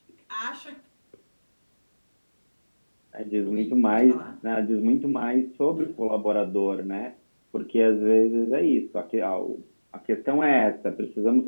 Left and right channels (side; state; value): both; inverted; correlation -1.00